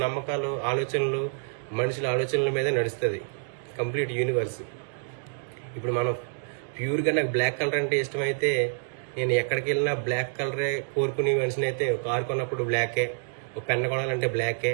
నమ్మకాలు, ఆలోచనలు, మనుషుల ఆలోచనల మీద నడుస్తుంది కంప్లీట్ యూనివర్స్. ఇప్పుడు మనం ప్యూర్గా నాకు బ్లాక్ కలర్ అంటే ఇష్టమైతే నేను ఎక్కడికి వెళ్ళినా బ్లాక్ కలరే కోరుకునే మనిషిని అయితే, కారు కొన్నప్పుడు బ్లాకే, ఒక పెన్ కొనాలంటే బ్లాకే,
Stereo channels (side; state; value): left; silent; digital silence